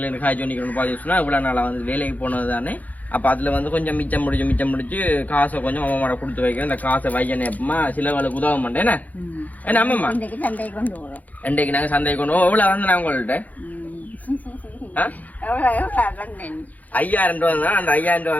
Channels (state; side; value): late; right; 0.078 ms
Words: காய்ச்சி பண்ணிக்கணும்னு பாத்தீங்கன்னா இவ்வளவு நாளா வந்து வேலைக்கு போனது தானே. அப்ப அதுல வந்து கொஞ்சம் மிச்சம் முடிச்சு காசை கொஞ்சம் அம்மாவோட கொடுத்து வைக்கிறேன். இந்த காசை வைக்கணும் எப்பமா சிலவளுக்கு உதவ மாட்டேன். என்ன அம்மா இன்றைக்கு நாங்க சந்தைக்கு கொண்டு போவோம். எவ்வளவு வந்து நான் உங்கள்கிட்ட 5000 ரூபா தான். அந்த 5000